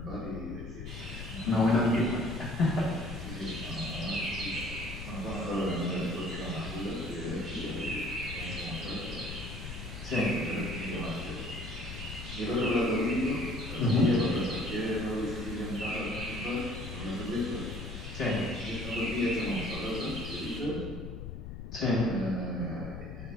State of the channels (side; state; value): left; noise; rumble, 8 dB below the sound